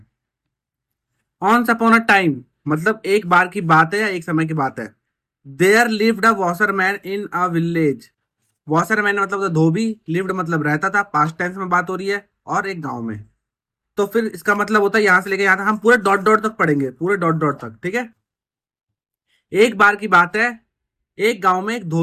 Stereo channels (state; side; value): identical; both; correlation 1.00